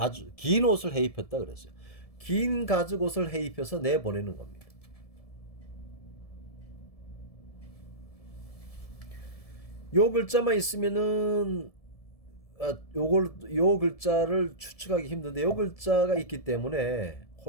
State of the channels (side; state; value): right; late; 1.7 ms